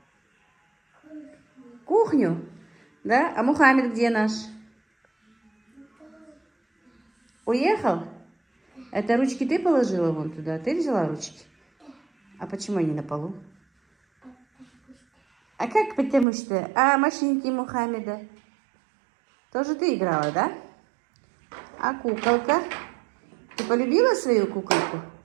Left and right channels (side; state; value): left; drops out; at 16.2 s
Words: Кухню. Да? А Мухаммед где наш? Уехал? Это ручки ты положила вон туда? Ты взяла ручки? А почему они на полу? А как потому что? А машинки Мухаммеда? Тоже ты играла, да? А куколка? Ты полюбила свою куколку?